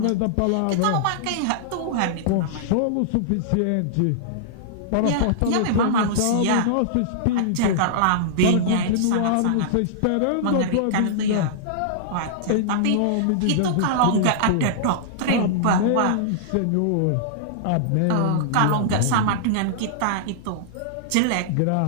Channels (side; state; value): both; different; correlation -0.02